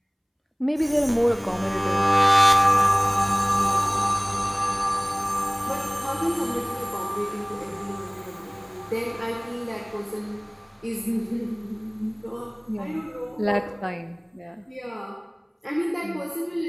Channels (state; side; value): identical; both; correlation 1.00